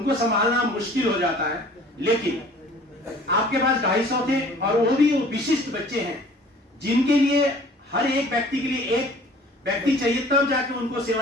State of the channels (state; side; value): normal; both; correlation 0.50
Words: संभालना मुश्किल हो जाता है, लेकिन आपके पास 250 थे, और वो भी विशिष्ट बच्चे हैं जिनके लिए हर एक व्यक्ति के लिए एक व्यक्ति चाहिए, तब जाके उनको